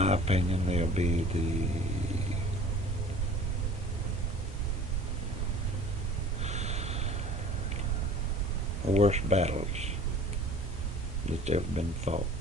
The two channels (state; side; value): normal; both; correlation 0.46